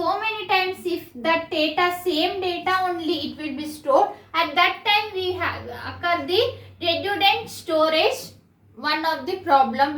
many times. If that data, same data only, it will be stored. At that time we have occur the redundant storage. One of the problem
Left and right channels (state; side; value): identical; both; correlation 1.00